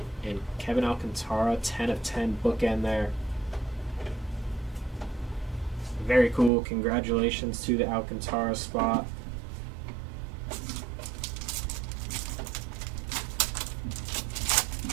And Kevin Alcantara, 10 of 10 bookend there. Very cool. Congratulations to the Alcantara spot.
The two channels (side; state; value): left; drops out; at 6.5 s